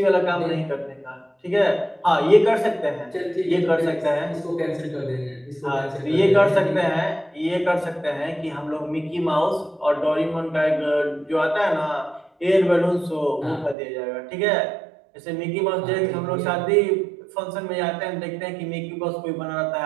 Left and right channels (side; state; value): left; drops out; at 13.8 s